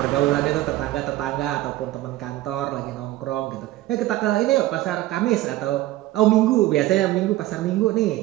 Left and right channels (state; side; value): quieter; left; 16.0 dB